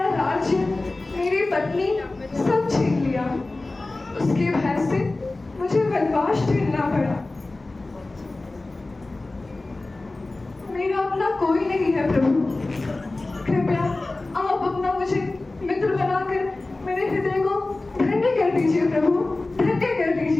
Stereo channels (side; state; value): right; quieter; 3.1 dB